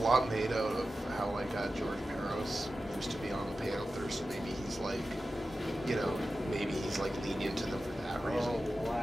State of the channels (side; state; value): both; normal; correlation 0.93